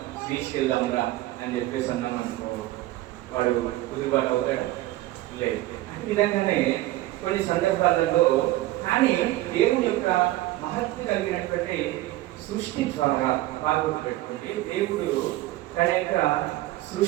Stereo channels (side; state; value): left; quieter; 16.9 dB